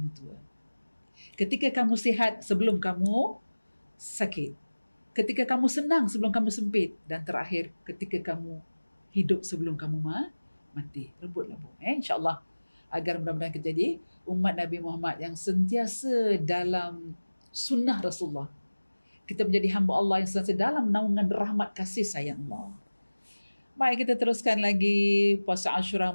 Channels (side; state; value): both; inverted; correlation -1.00